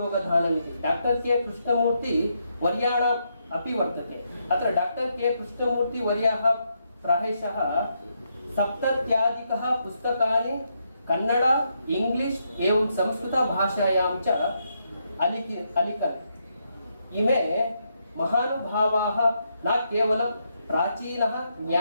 इति डॉक्टर के कृष्णमूर्ति वर्याणाम् अपि वर्तते। अत्र डॉक्टर के कृष्णमूर्ति वर्याः प्रायशः 70 पुस्तकानि कन्नड इंग्लिश एवं संस्कृत भाषायां च अलिखत्। इमे महानुभावाः न केवलं प्राचीनः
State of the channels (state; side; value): inverted; both; correlation -0.80